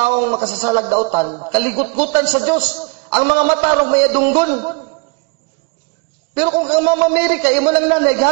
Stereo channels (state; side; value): quieter; left; 30.6 dB